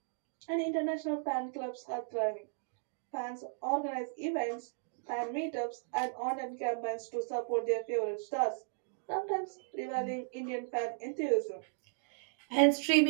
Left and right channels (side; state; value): left; silent; digital silence